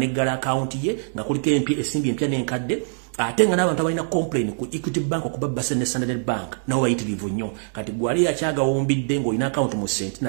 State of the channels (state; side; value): silent; left; digital silence